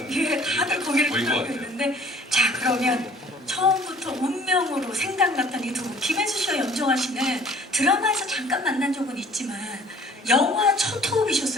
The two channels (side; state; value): both; normal; correlation 0.53